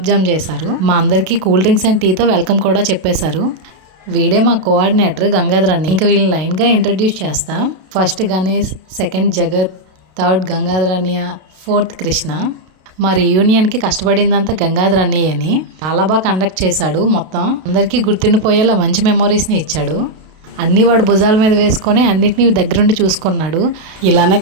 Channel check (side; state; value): left; late; 32 ms